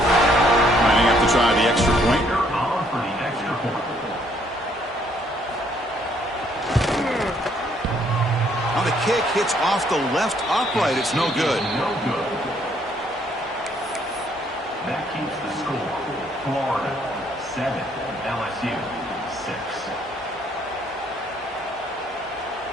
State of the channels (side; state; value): both; normal; correlation 0.67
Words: Lining up to try the extra point. Now the kick hits off the left upright. It's no good. That keeps the score. Florida 7, LSU